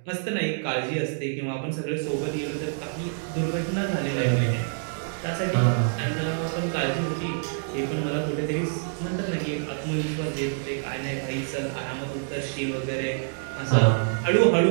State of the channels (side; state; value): left; silent; digital silence